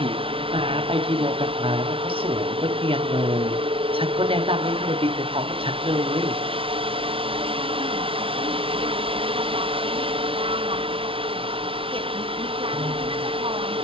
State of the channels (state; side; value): late; left; 0.26 ms